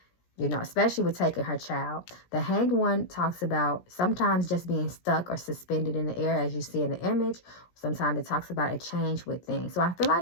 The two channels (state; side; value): late; right; 17 ms